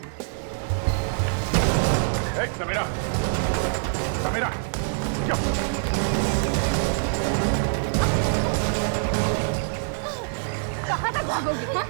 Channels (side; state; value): left; silent; digital silence